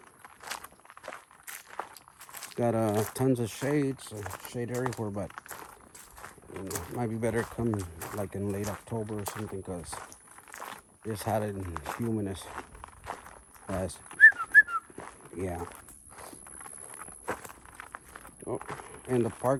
Got tons of shade, so shade everywhere, but might be better come like in late October or something, because it's hot and humid as yeah. Oh, and the park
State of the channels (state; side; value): identical; both; correlation 1.00